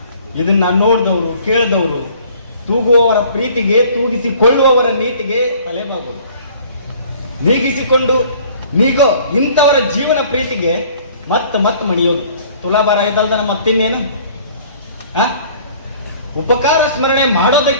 ಇದನ್ನ ನೋಡಿದವರು ಕೇಳಿದವರು ತೂಗುವವರ ಪ್ರೀತಿಗೆ, ತೂಗಿಸಿಕೊಳ್ಳುವವರ ನೀತಿಗೆ ತಲೆಬಾಗೋದು. ನೀಗಿಸಿಕೊಂಡು ನೀಗೋ ಇಂಥವರ ಜೀವನ ಪ್ರೀತಿಗೆ ಮತ್ತೆ ಮಣಿಯೋದು. ತುಲಾಭಾರ ಇದಲ್ದ ನಮ್ಮ ಮತ್ತಿನ್ನೇನು? ಉಪಕಾರ ಸ್ಮರಣೆ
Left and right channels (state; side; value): inverted; both; correlation -0.53